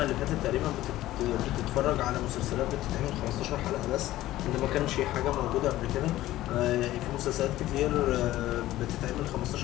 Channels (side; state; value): right; quieter; 15.3 dB